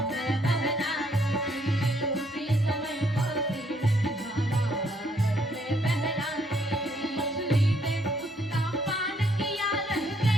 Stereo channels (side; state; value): both; normal; correlation 0.69